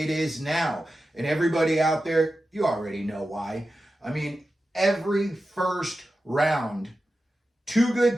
it is now. And everybody out there, you already know why. I mean, every first round, two good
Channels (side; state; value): both; normal; correlation 0.92